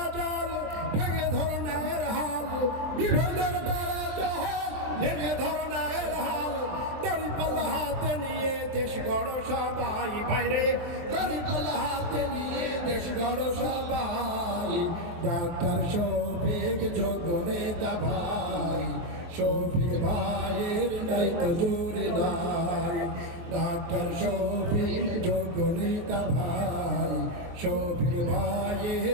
জল ভেঙে ধর ন্যায়ের হাল, বিভেদের বেড়া জল ভেঙে ধর ন্যায়ের হাল, দড়িপাল্লা হাতে নিয়ে দেশ গড় সবাই ভাইরে, দড়িপাল্লা হাতে নিয়ে দেশ গড় সবাই, ডাক্তার শফিক যোগ্য নেতা ভাই, শফিক ভাইয়ের নাই তো জুড়ি নাই, ডাক্তার শফিক যোগ্য নেতা ভাই, শফিক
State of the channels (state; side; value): late; left; 23 ms